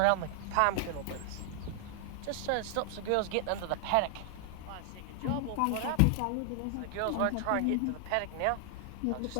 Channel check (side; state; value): both; different; correlation 0.00